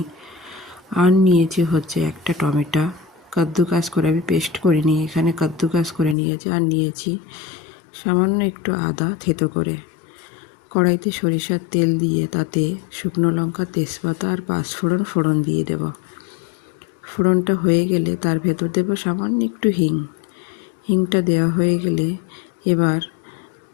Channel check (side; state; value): right; drops out; at 6.2 s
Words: আর নিয়েছি হচ্ছে একটা টমেটো, কাদ্দুকাস করে আমি পেস্ট করে নিয়ে এখানে কাদ্দুকাস করে নিয়েছি। আর নিয়েছি সামান্য একটু আদা থেতো করে। কড়াইতে সরিষার তেল দিয়ে তাতে শুকনো লঙ্কা, তেজপাতা আর পাঁচফোড়ন ফোড়ন দিয়ে দেব। ফোড়নটা হয়ে গেলে তার ভেতর দেব সামান্য একটু হিংটা দেওয়া হয়ে গেলে এবার